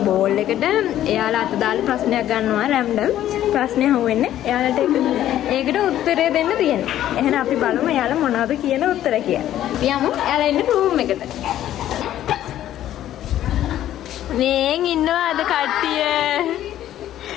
බෝල් එකට එයාලා අත දාලා ප්‍රශ්නයක් ගන්නවා රැන්ඩම්. ප්‍රශ්නේ අහුවෙන්නේ එයාලට ඒකට උත්තරය දෙන්න තියෙනවා. එහෙනම් අපි බලමු එයාලා මොනවද කියන උත්තර කියලා. යමු එයාලා ඉන්න රූම් එකට. මේන් ඉන්නවාද කට්ටිය?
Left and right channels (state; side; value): quieter; right; 12.3 dB